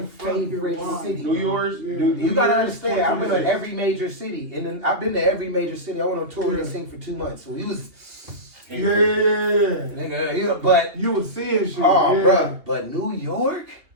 favorite city. New York. You gotta understand. I've been to every major city, and then I've been to every major city. I went on tour and sing for 2 months, so he was. Nigga, but you was seeing shit. Bruh. But New York.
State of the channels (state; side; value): late; left; 2.7 ms